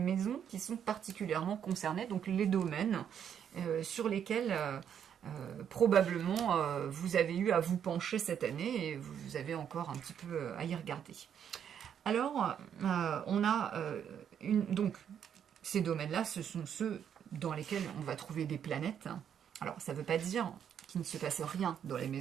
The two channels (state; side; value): quieter; left; 8.7 dB